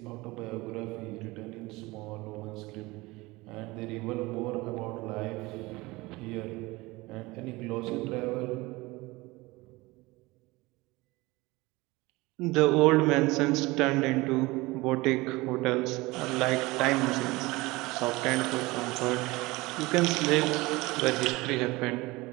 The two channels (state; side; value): quieter; left; 21.8 dB